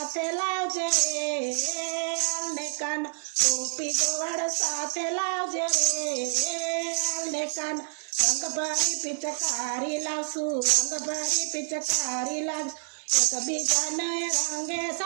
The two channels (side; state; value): left; silent; digital silence